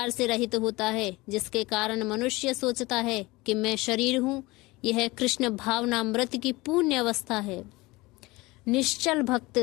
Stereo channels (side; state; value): right; quieter; 21.7 dB